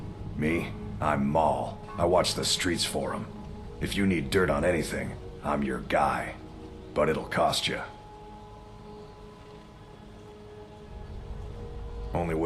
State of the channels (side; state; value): both; identical; correlation 1.00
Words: Me? I'm Maul. I watch the streets for them. If you need dirt on anything, I'm your guy. But it'll cost you. Only